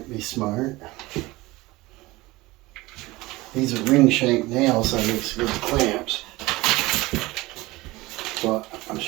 be smart. These are ring shank nails, so it makes good clamps. But I'm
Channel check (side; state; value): left; quieter; 20.4 dB